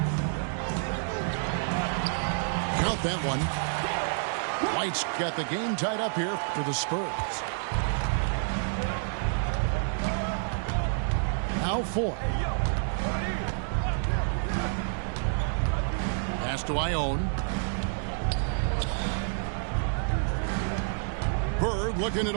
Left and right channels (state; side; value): silent; left; digital silence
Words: Count that one. White's got the game tied up here for the Spurs. Now Foy. Pass to Ione. looking it